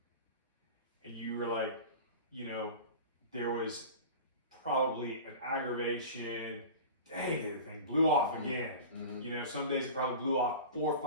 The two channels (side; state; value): both; inverted; correlation -0.35